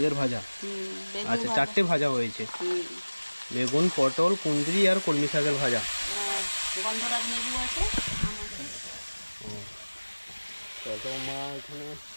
ভাজা। আচ্ছা, 4টে ভাজা হয়েছে, বেগুন, পটল, কুঁদরি আর কলমি শাকের ভাজা। গন্ধরাজ লেবু আছে। তো মা এখানে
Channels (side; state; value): both; inverted; correlation -1.00